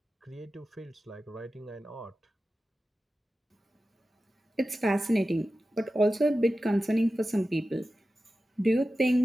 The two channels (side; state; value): both; normal; correlation 0.94